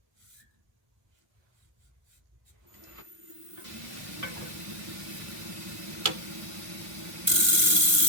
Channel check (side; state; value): left; late; 1.2 ms